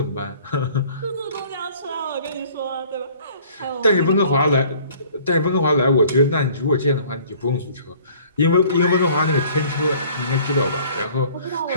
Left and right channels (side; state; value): both; inverted; correlation -0.53